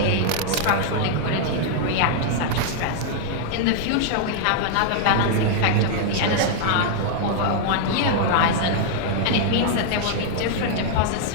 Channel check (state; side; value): different; both; correlation -0.01